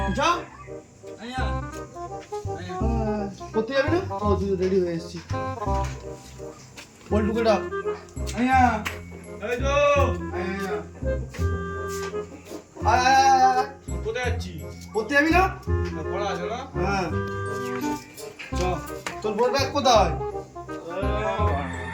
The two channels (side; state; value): both; identical; correlation 1.00